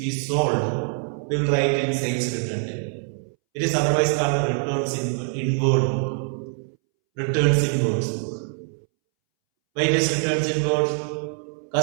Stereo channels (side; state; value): left; silent; 63 dB below the other